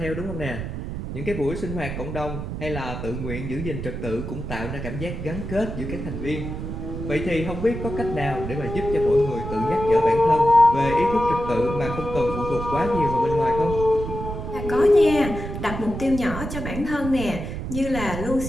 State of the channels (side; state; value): right; noise; rumble, 6 dB below the sound